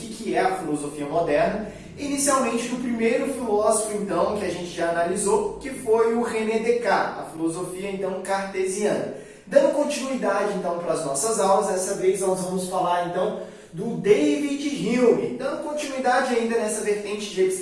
é a filosofia moderna. Inicialmente do primeiro filósofo, então, que a gente já analisou, que foi o René Descartes, a filosofia, então, cartesiana. Dando continuidade, então, para as nossas aulas, dessa vez nós vamos falar, então, do David Hume. Dando continuidade ainda nessa vertente de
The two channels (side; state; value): both; identical; correlation 1.00